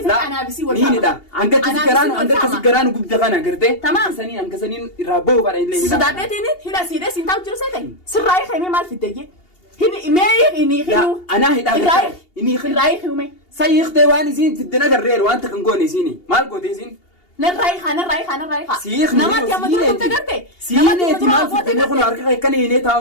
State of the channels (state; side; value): late; right; 2.8 ms